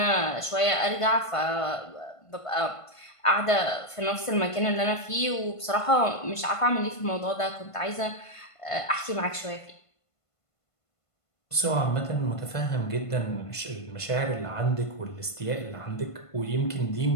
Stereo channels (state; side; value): late; right; 1.5 ms